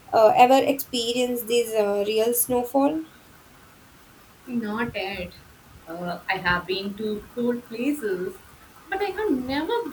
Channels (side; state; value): both; identical; correlation 1.00